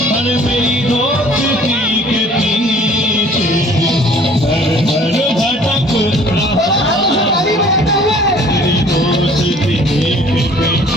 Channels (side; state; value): both; normal; correlation 0.53